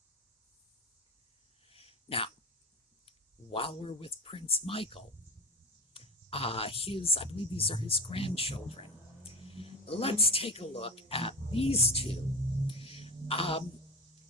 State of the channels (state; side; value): normal; both; correlation 0.26